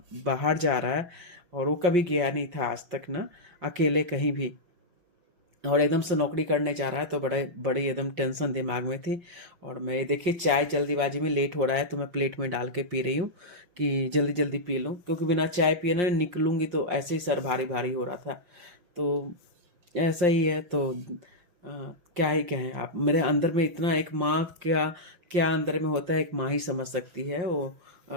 बाहर जा रहा है। और वो कभी गया नहीं था आज तक ना, अकेले कहीं भी। और एकदम से नौकरी करने जा रहा है तो बड़े बड़ी एकदम टेंशन दिमाग में थी। और मैं देखिए चाय जल्दीबाजी में लेट हो रहा है तो मैं प्लेट में डाल के पी रही हूँ कि जल्दी जल्दी पी लूँ, क्योंकि बिना चाय पिए ना निकलूँगी तो ऐसे ही सर भारी भारी हो रहा था। तो ऐसा ही है। तो क्या ही कहें, आप मेरे अंदर में इतना एक माँ क्या क्या अंदर में होता है, एक माँ ही समझ सकती है वो।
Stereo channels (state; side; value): late; left; 5.7 ms